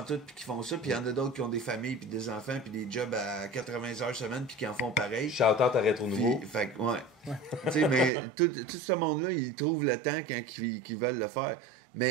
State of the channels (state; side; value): drops out; left; at 8.1 s